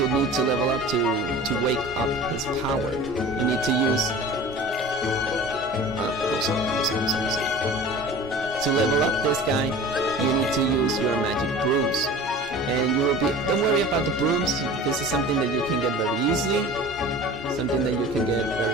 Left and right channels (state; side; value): normal; both; correlation 0.40